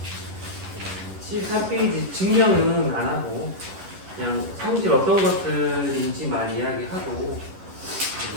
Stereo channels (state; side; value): late; left; 11 ms